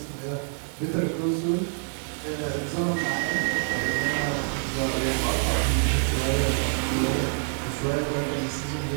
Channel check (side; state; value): left; silent; 61 dB below the other